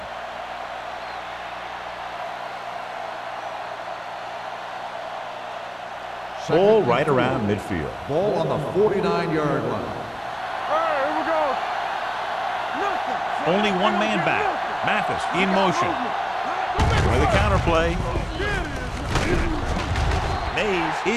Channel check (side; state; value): both; identical; correlation 1.00